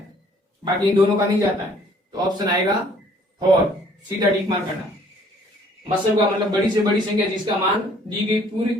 बाकी इन दोनों का नहीं जाता है, तो ऑप्शन आएगा 4। सीधा टिक मार करना। मसल का मतलब बड़ी से बड़ी संख्या जिसका मान दी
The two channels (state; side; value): normal; both; correlation 0.59